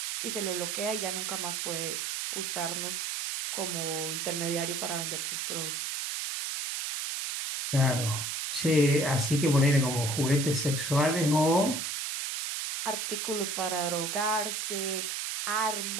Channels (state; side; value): noise; right; hiss, 2 dB below the sound